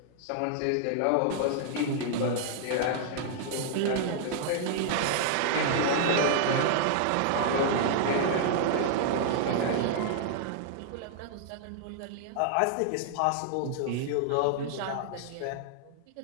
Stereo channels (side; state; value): both; different; correlation -0.01